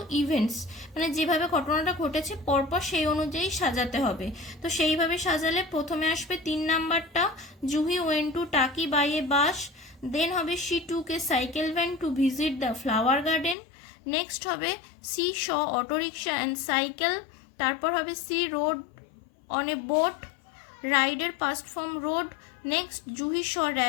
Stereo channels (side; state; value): right; drops out; at 13.6 s